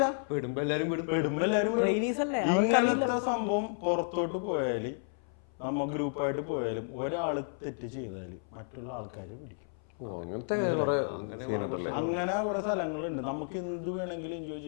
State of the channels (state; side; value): silent; right; 56 dB below the other